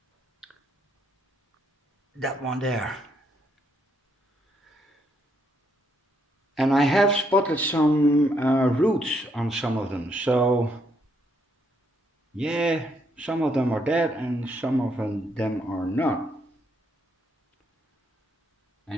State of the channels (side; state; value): both; normal; correlation 0.74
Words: that one there. And I have spotted some roots on some of them, so yeah, some of them are dead and some of them are not.